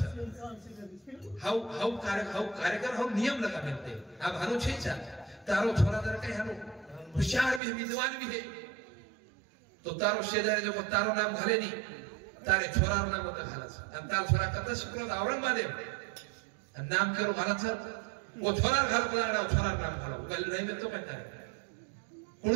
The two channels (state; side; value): drops out; left; at 7.6 s